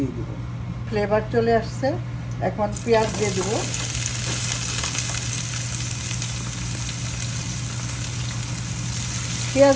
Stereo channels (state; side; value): identical; both; correlation 1.00